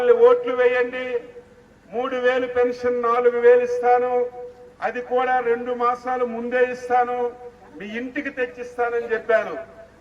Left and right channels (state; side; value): identical; both; correlation 1.00